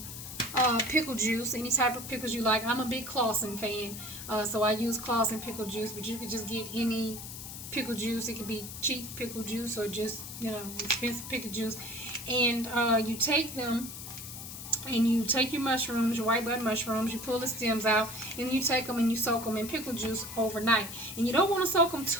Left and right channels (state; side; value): noise; left; hiss, 10 dB below the sound